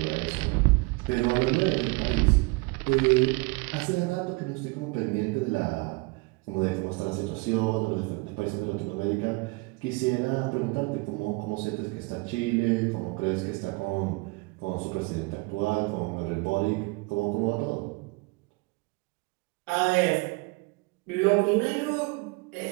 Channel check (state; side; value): quieter; left; 26.4 dB